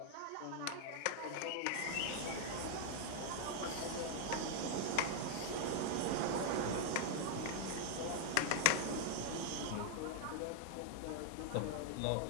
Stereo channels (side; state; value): both; different; correlation 0.00